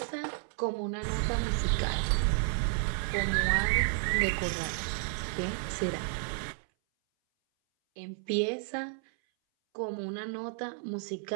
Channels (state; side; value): silent; left; 57 dB below the other